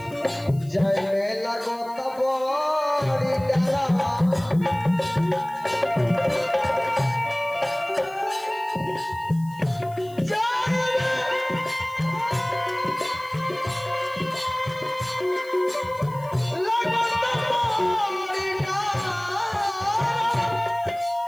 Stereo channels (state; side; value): noise; left; hiss, 24 dB below the sound